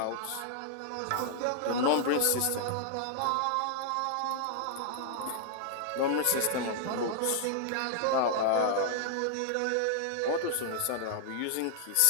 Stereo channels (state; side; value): different; both; correlation -0.01